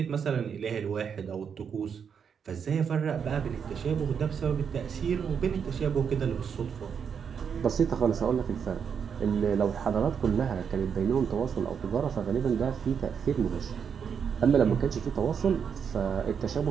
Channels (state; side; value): quieter; left; 7.0 dB